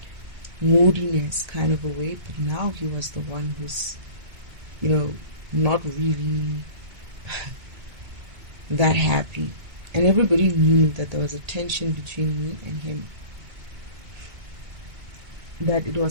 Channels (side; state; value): left; late; 2.2 ms